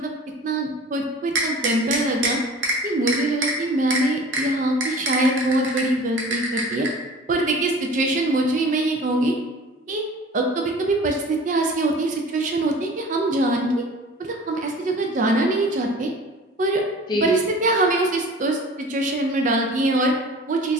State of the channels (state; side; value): normal; both; correlation 0.43